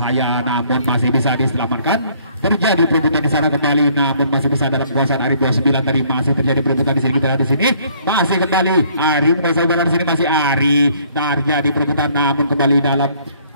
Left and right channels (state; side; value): inverted; both; correlation -0.62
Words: namun masih bisa diselamatkan. Terjadi perebutan di sana kembali, namun masih bisa dalam penguasaan Arif 29 tadi. Masih terjadi perebutan di sini, kita lihat di sini masih kembali Ari menguasai bola di sini, masih Ari, terjadi perebutan namun kembali dalam